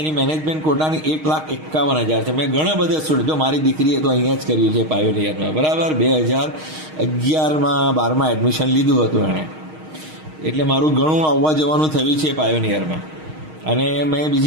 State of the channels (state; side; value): late; left; 6.4 ms